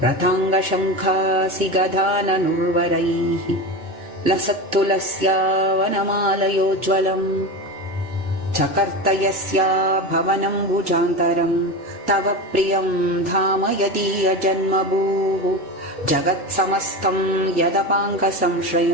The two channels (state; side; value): normal; both; correlation 0.23